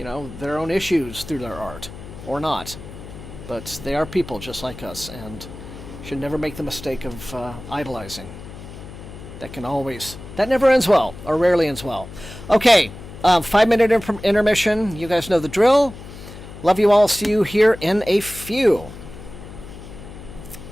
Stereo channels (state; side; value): noise; left; hum, 14 dB below the sound